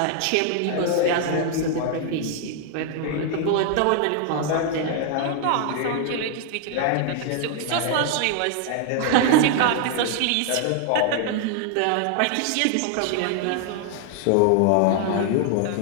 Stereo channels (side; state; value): both; different; correlation 0.00